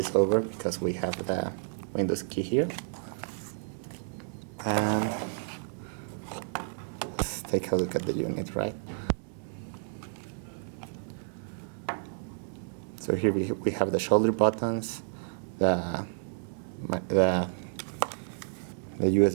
over because we have the Windows key here. And let's take a look at the unit, right? So here we have the shoulder buttons, the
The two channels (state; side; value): silent; left; digital silence